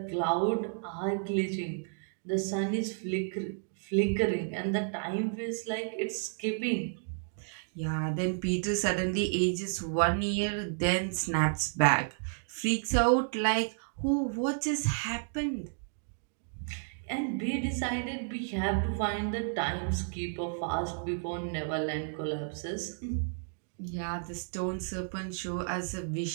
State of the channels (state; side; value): silent; left; digital silence